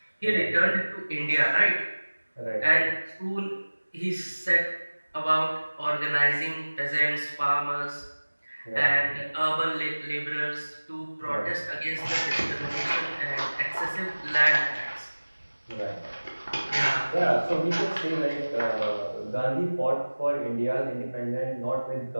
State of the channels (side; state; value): both; inverted; correlation -1.00